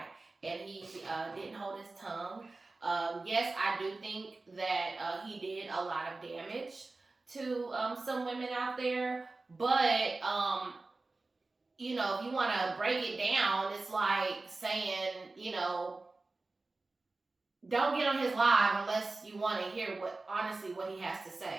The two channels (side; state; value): left; quieter; 3.4 dB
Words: and he didn't hold his tongue. Yes, I do think that he did a lot of damage to some women out there, but if you want to break it down, it's like saying, don't get on his live unless you want to hear what he has to